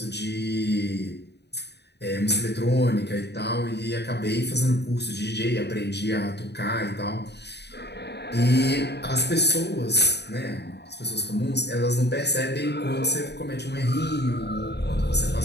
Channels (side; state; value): right; late; 0.49 ms